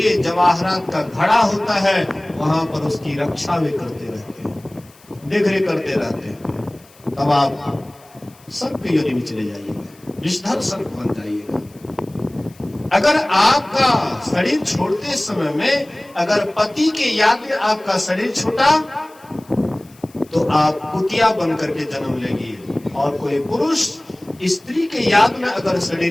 जवाहरात का घड़ा होता है वहां पर उसकी रक्षा भी करते रहते हैं, देखरेख करते रहते हैं। तब आप सर्प की योनि में चले जाइएगा, विषधर सर्प बन जाइएगा। अगर आपका शरीर छोड़ते समय में अगर पति के याद में आपका शरीर छूटा तो आप कुतिया बन करके जन्म लेगी। और कोई पुरुष स्त्री के याद में अगर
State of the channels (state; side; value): noise; left; hiss, 27 dB below the sound